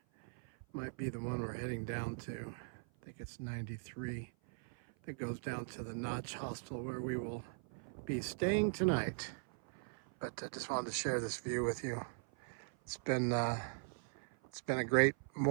might be the one we're heading down to. I think it's 93. That goes down to the Notch Hostel where we will be staying tonight. But I just wanted to share this view with you. It's been a great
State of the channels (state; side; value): silent; left; 51 dB below the other